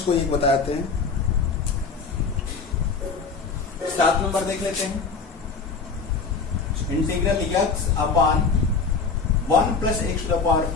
कोई एक बताते हैं। 7 नंबर देख लेते हैं, integral x upon 1 plus x to the power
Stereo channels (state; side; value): quieter; right; 4.9 dB